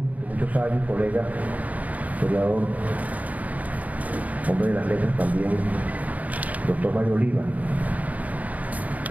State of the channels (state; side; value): late; left; 0.073 ms